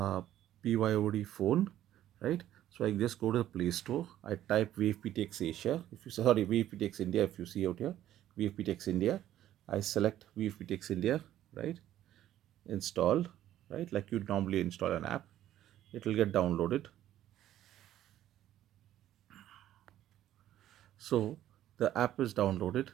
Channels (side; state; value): left; quieter; 12.5 dB